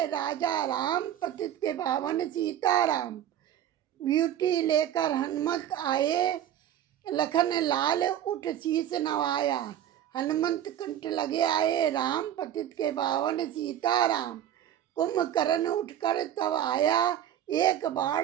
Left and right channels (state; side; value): quieter; left; 10.9 dB